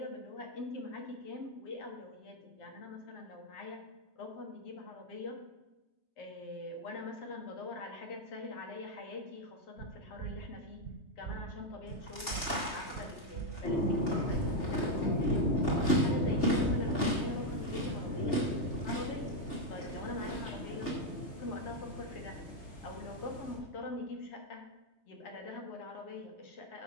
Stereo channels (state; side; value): late; right; 3.2 ms